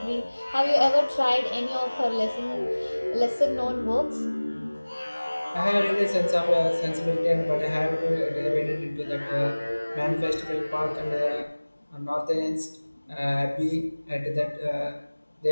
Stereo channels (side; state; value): both; inverted; correlation -1.00